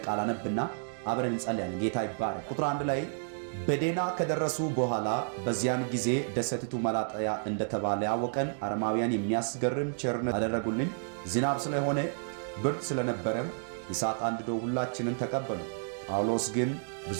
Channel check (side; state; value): left; silent; digital silence